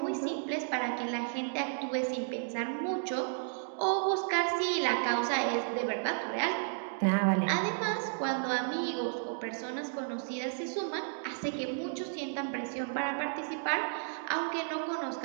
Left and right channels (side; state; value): left; silent; digital silence